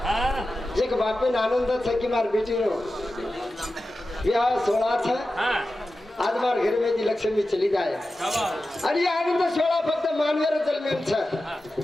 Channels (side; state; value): both; normal; correlation 0.93